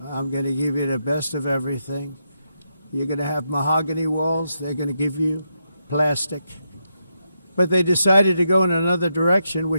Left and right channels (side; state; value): both; inverted; correlation -0.83